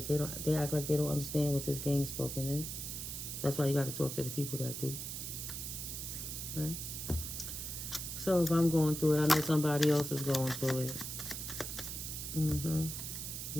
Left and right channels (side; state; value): right; noise; hiss, 6 dB below the sound